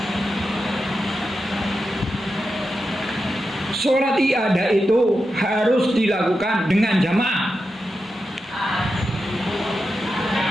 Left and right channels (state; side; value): normal; both; correlation 0.89